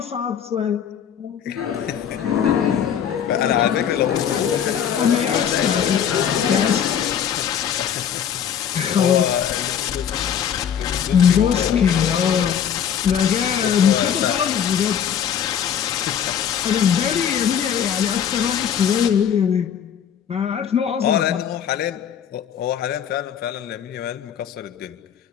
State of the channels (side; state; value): right; quieter; 8.6 dB